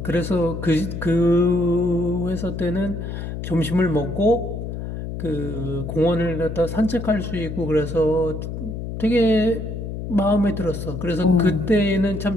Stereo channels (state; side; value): noise; left; hum, 6 dB below the sound